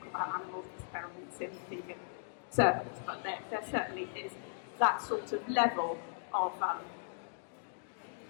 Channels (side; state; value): right; silent; digital silence